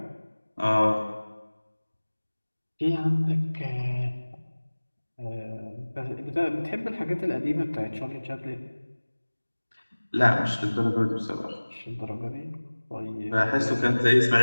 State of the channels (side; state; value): both; inverted; correlation -1.00